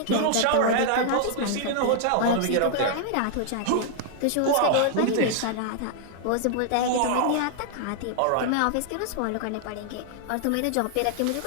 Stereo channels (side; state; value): both; different; correlation 0.00